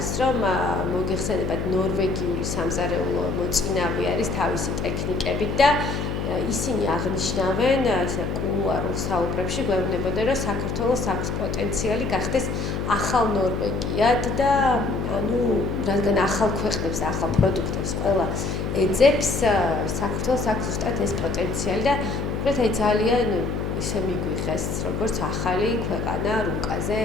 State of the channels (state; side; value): noise; left; hum, 2 dB below the sound